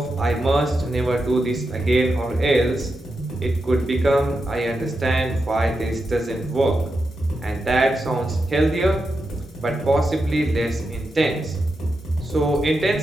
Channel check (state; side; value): normal; both; correlation 0.87